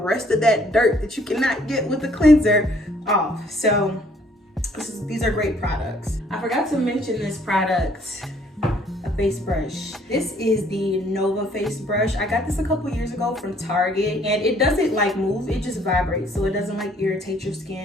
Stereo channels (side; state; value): both; normal; correlation 0.62